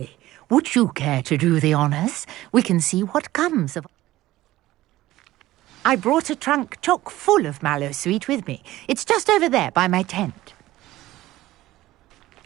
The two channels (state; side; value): quieter; left; 16.2 dB